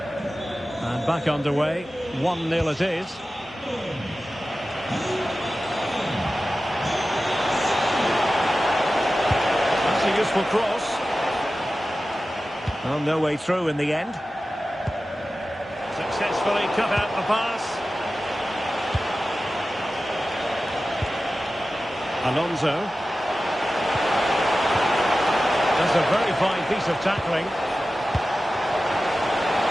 Back underway, 1-0 it is. That's a useful cross. Well, no way through in the end. Successfully cut out the pass. Alonso. That's a very fine piece of tackling.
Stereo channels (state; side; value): normal; both; correlation 0.95